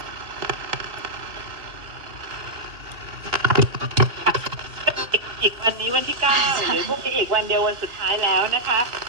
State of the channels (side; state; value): left; late; 2.6 ms